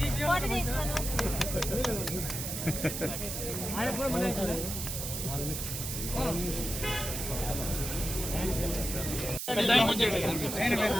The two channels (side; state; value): right; noise; hiss, 4 dB below the sound